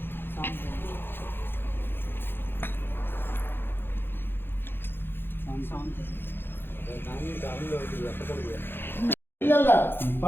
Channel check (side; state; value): right; late; 0.10 ms